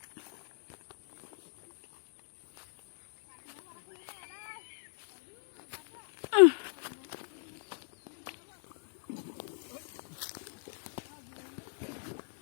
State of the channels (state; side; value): silent; right; digital silence